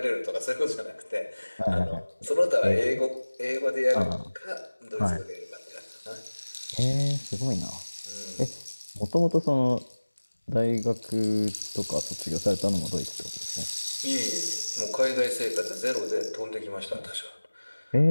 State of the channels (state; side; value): inverted; both; correlation -1.00